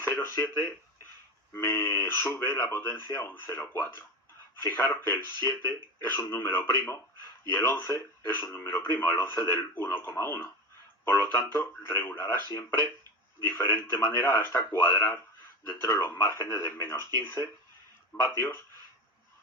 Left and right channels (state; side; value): normal; both; correlation 0.25